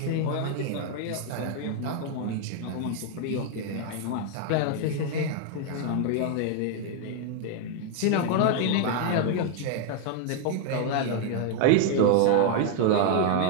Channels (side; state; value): both; different; correlation 0.00